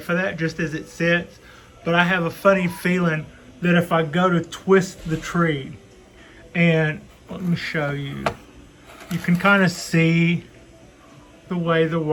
for that, just as it sits, but I have a funny feeling that if I go to twist the tree, and let me show you, you can kind of see the way the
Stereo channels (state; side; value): identical; both; correlation 1.00